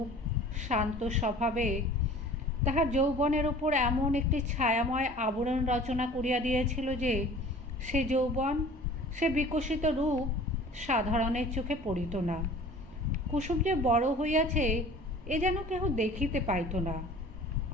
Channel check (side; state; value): both; normal; correlation 0.45